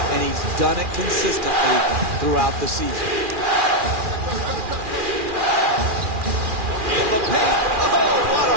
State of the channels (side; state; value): left; late; 2.4 ms